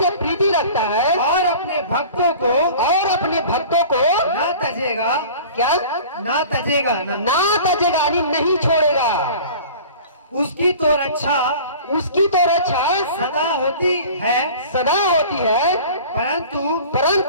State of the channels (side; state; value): both; inverted; correlation -0.42